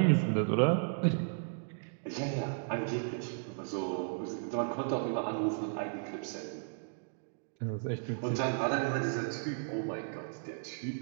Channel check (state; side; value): silent; left; digital silence